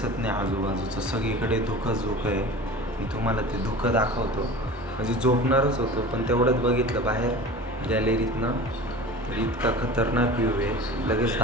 नाही आजूबाजूचं, सगळीकडे धुकंच धुकं आहे. मी तुम्हाला ते धुकं दाखवतो, म्हणजे झोपणारच होतो पण तेवढंच बघितलं बाहेर गॅलरीतनं, तर इतका खतरनाक व्ह्यू आहे, लगेच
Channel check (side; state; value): both; normal; correlation 0.37